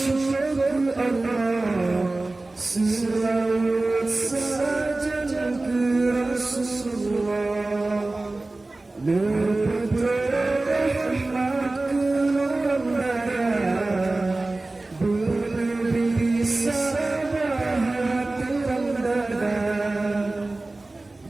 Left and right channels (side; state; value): left; quieter; 3.0 dB